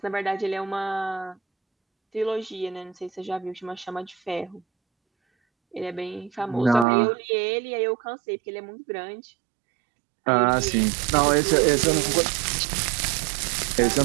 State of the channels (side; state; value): left; drops out; at 6.9 s